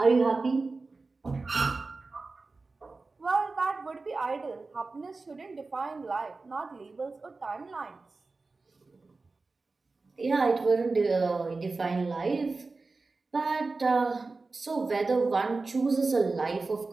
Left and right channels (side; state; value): left; quieter; 3.8 dB